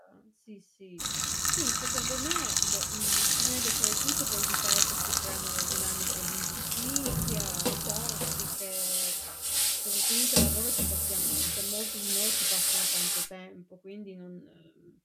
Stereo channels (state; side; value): identical; both; correlation 1.00